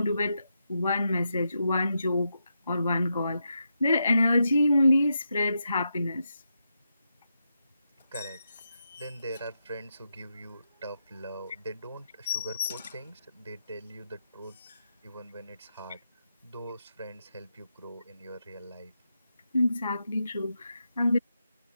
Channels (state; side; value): inverted; both; correlation -0.85